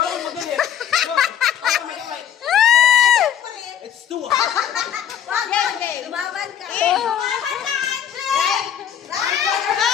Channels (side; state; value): right; quieter; 9.4 dB